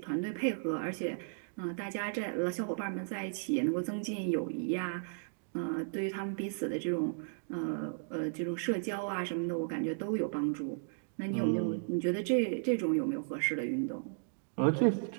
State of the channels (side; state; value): left; silent; digital silence